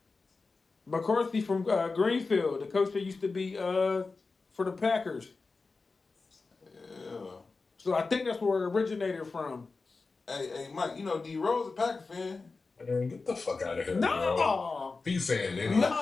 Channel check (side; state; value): right; quieter; 4.0 dB